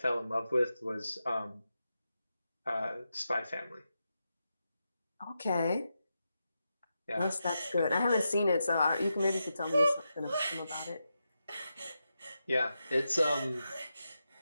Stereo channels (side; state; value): both; inverted; correlation -0.88